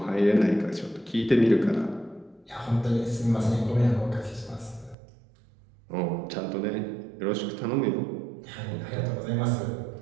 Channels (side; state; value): left; drops out; at 5.0 s